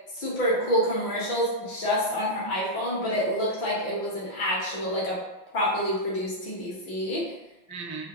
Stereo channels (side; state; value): right; late; 5.8 ms